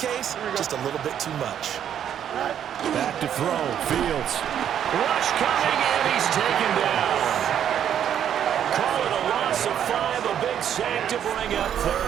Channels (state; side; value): quieter; left; 9.5 dB